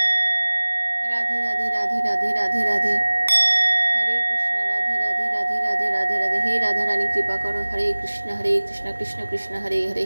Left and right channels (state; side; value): inverted; both; correlation -1.00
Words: রাধে রাধে রাধে রাধে রাধে, হরে কৃষ্ণ। রাধে রাধে রাধে রাধে রাধে রাধে। হে রাধা রানী কৃপা করো। হরে কৃষ্ণ কৃষ্ণ কৃষ্ণ হরে হরে,